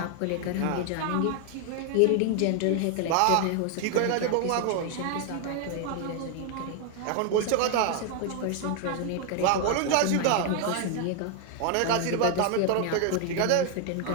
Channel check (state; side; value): different; both; correlation 0.00